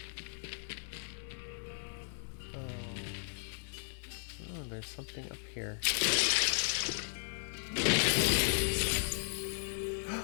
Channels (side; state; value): right; silent; digital silence